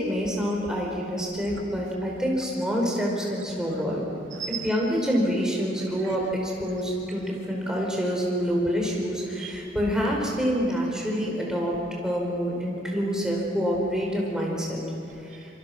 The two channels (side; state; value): both; normal; correlation 0.69